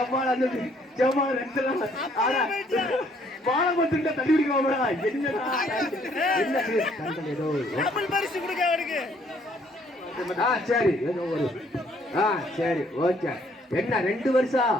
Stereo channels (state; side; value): normal; both; correlation 0.65